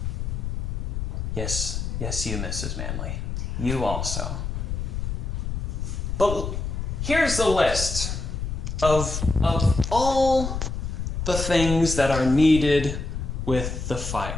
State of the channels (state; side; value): noise; left; rumble, 3 dB below the sound